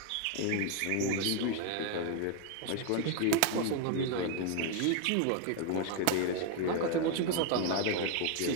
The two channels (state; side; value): different; both; correlation 0.01